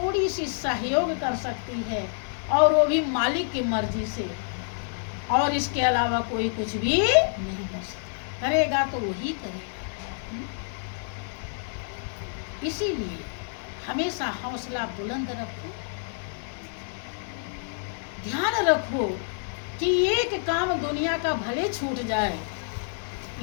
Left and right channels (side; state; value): right; silent; digital silence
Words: सी सहयोग कर सकती है, और वो भी मालिक की मर्जी से, और इसके अलावा कोई कुछ भी नहीं कर सकता। करेगा तो वही करेगा। इसीलिए हमेशा हौसला बुलंद रखो, ध्यान रखो कि एक काम दुनिया का भले छूट जाए,